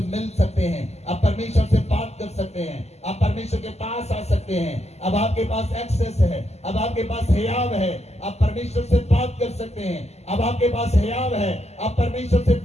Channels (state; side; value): late; right; 0.31 ms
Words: मिल सकते हैं, आप परमेश्वर से बात कर सकते हैं, आप परमेश्वर के पास आ सकते हैं। अब आपके पास एक्सेस है, अब आपके पास हियाव है, आप परमेश्वर से बात कर सकते हैं। अब आपके पास हियाव है, आप परमेश्वर से